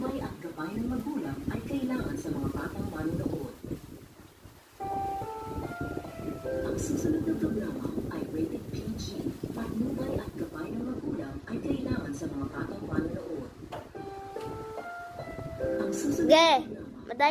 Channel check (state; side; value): identical; both; correlation 1.00